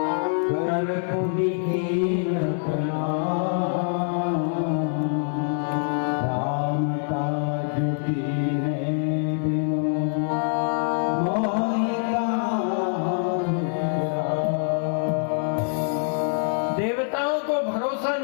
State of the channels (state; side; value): silent; right; digital silence